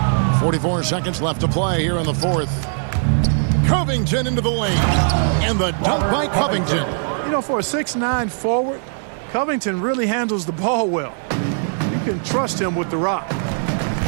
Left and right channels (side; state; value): left; silent; digital silence